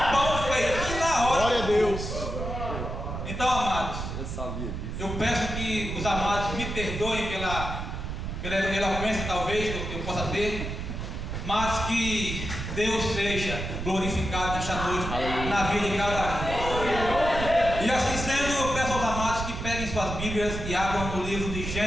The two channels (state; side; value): noise; right; rumble, 5 dB below the sound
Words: pão feito na hora. Glória a Deus. Então, amados, Eu sabia disso. eu peço que os amados me perdoem pela eloquência talvez que eu possa ter, mas que Deus seja glorificado nesta noite na vida de cada um. E assim sendo, eu peço aos amados que peguem suas Bíblias e abram no livro de